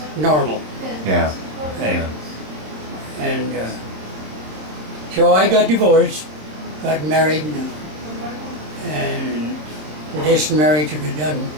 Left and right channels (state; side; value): late; left; 26 ms